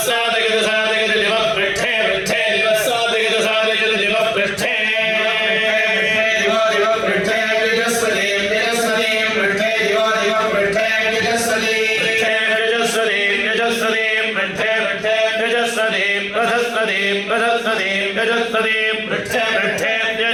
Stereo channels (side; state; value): both; identical; correlation 1.00